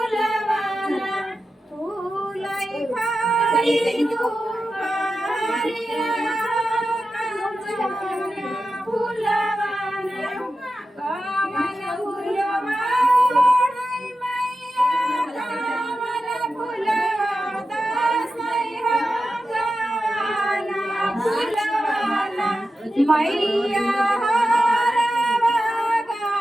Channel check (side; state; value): both; normal; correlation 0.92